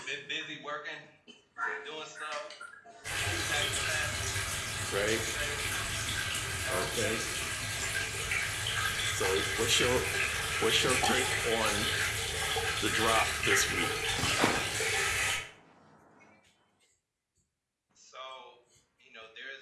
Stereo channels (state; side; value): identical; both; correlation 1.00